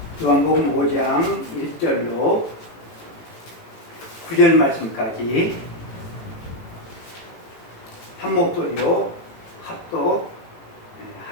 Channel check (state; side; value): late; right; 18 ms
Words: 요한복음 5장 1절로 9절 말씀까지 한 목소리로